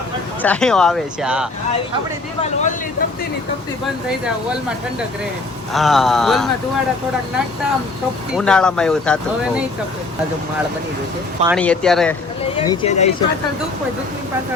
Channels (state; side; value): quieter; right; 3.4 dB